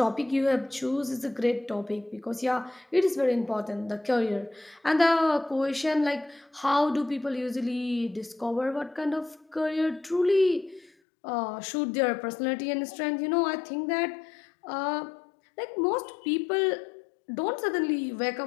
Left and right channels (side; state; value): right; drops out; at 10.9 s